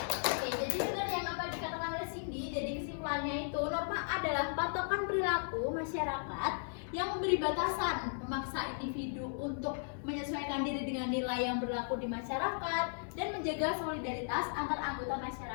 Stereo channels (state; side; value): silent; right; digital silence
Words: Oke, jadi benar yang apa dikatakan oleh Cindy. Jadi kesimpulannya itu norma adalah patokan perilaku masyarakat yang memberi batasan, memaksa individu untuk menyesuaikan diri dengan nilai yang berlaku di masyarakat dan menjaga solidaritas antar anggota